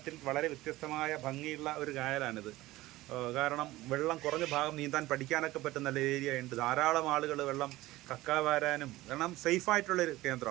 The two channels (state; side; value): quieter; left; 17.7 dB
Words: വളരെ വ്യത്യസ്തമായ ഭംഗിയുള്ള ഒരു കായലാണിത്. കാരണം വെള്ളം കുറഞ്ഞ ഭാഗം നീന്താൻ പഠിക്കാനൊക്കെ പറ്റുന്ന നല്ല ഏരിയ ഉണ്ട്. ധാരാളം ആളുകൾ വെള്ളം കക്കാവാരാനും, കാരണം സേഫായിട്ടുള്ളൊരു